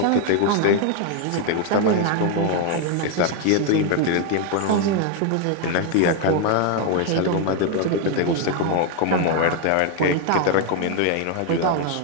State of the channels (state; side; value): different; both; correlation 0.01